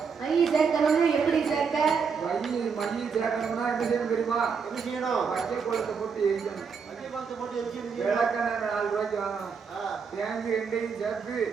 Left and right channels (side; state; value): left; quieter; 5.9 dB